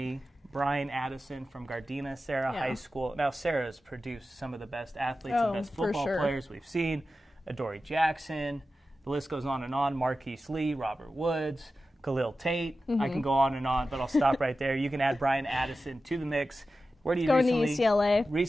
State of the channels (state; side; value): normal; both; correlation 0.93